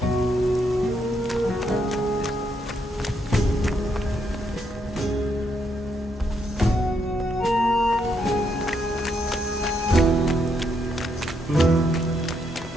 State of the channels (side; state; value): both; normal; correlation 0.76